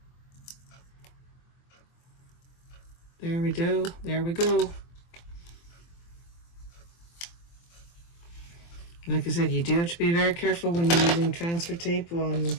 There we go, there we go. Like I said, you do have to be very careful when you're using transfer tape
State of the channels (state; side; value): late; right; 23 ms